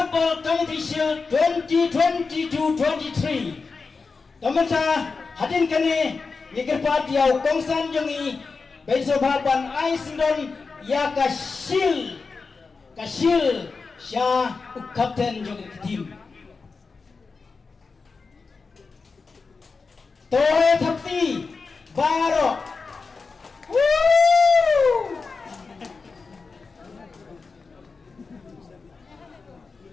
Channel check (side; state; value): right; quieter; 4.5 dB